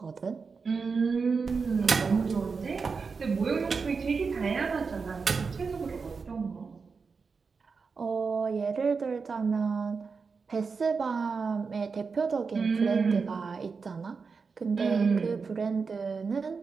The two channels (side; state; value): left; quieter; 5.0 dB